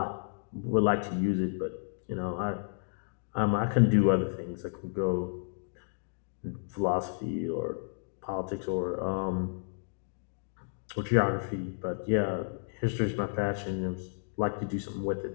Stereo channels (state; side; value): silent; right; digital silence